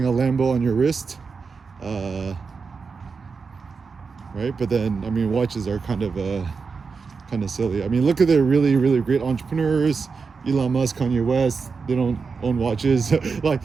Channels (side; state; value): left; quieter; 5.0 dB